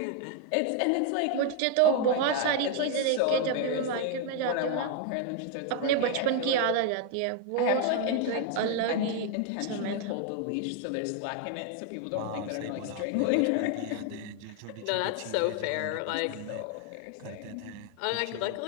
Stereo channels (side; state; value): both; different; correlation 0.01